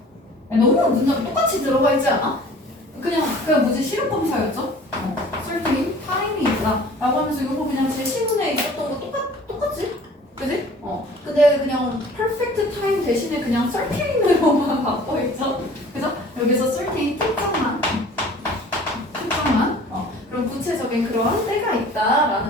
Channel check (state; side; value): normal; both; correlation 0.48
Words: 너무 문장 똑같이 들어가 있지 않아? 그냥 뭐지 실력 검사였죠? certainly time이 있다 라고 하면서 이거 그냥 제 시문에 있었던 거 똑같지? 그지? 근데 그냥 perfect time 대신에 그냥 certainly로만 바꿔있죠? 그죠? 여기서 certain 특정만 그런 구체적인 그런 때가